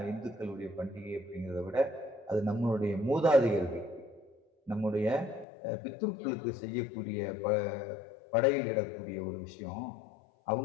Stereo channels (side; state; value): right; drops out; at 5.5 s